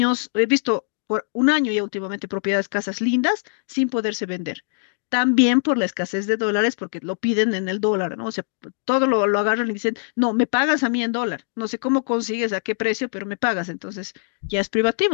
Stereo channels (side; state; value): right; silent; digital silence